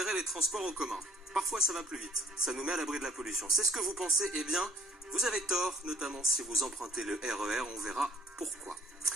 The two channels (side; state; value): both; normal; correlation 0.57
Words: les transports en commun. Parfois ça va plus vite, ça nous met à l'abri de la pollution. C'est ce que vous pensez, eh bien, vous avez tort, notamment si vous empruntez le RER, on verra pourquoi.